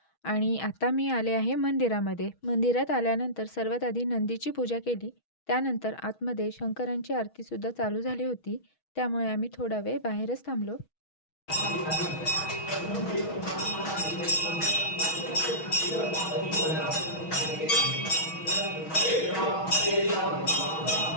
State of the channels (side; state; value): right; late; 6.3 ms